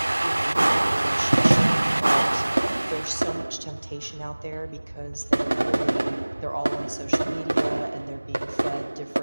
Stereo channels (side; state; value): both; inverted; correlation -1.00